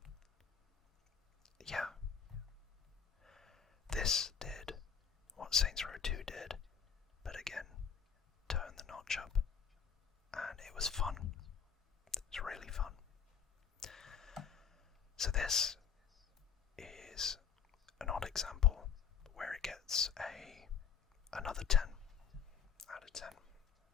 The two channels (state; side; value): quieter; right; 7.3 dB